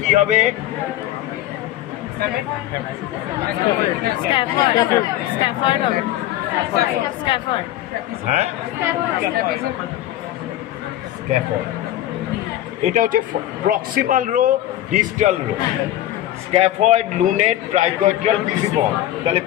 কি হবে, হ্যাঁ স্ক্যাফয়েড। এটা হচ্ছে proximal row, distal row. Scaphoid, lunate, triquetral, pisiform. তাহলে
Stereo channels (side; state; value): right; quieter; 13.7 dB